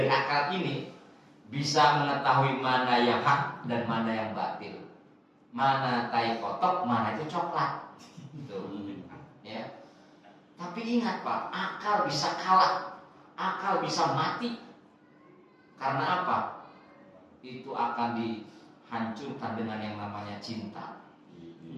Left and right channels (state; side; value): identical; both; correlation 1.00